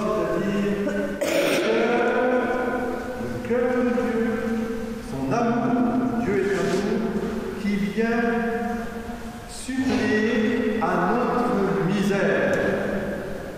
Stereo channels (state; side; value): identical; both; correlation 1.00